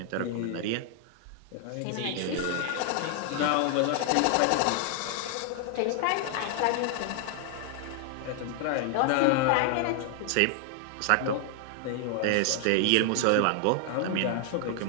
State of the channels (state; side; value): different; both; correlation 0.00